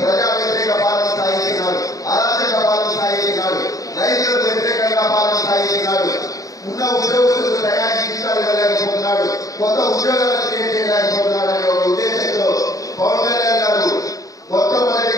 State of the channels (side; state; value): right; late; 0.17 ms